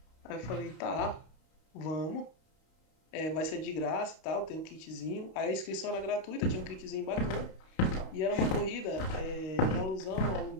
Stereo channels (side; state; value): right; late; 32 ms